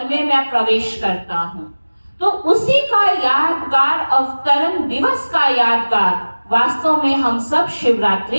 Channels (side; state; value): both; inverted; correlation -1.00